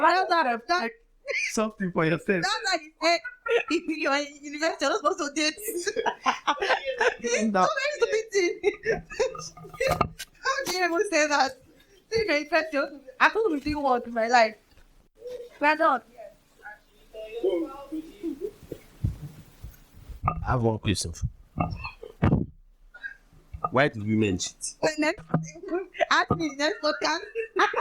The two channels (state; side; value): identical; both; correlation 1.00